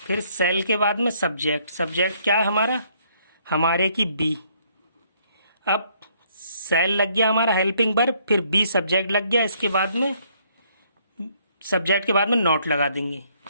फिर सेल के बाद में सब्जेक्ट, सब्जेक्ट क्या है हमारा, हमारे की बी, अब सेल लग गया हमारा हेल्पिंग वर्ब, फिर बी सब्जेक्ट लग गया, इसके बाद में सब्जेक्ट के बाद में नोट लगा देंगे,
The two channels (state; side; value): inverted; both; correlation -0.67